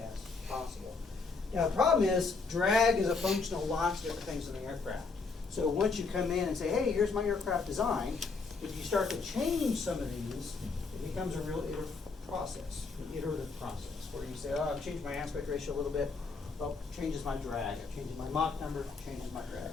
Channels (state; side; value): quieter; right; 4.3 dB